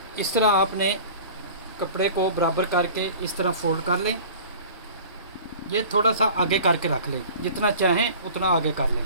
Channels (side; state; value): both; inverted; correlation -0.42